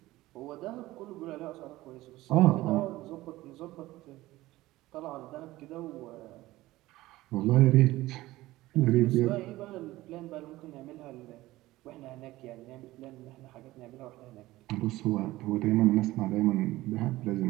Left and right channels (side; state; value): left; quieter; 17.5 dB